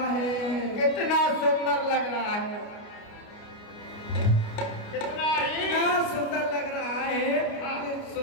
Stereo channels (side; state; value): right; late; 29 ms